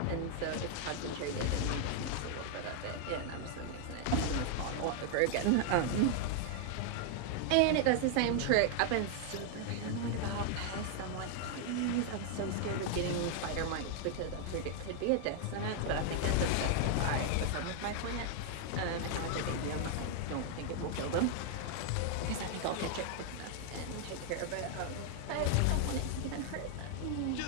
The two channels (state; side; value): different; both; correlation 0.00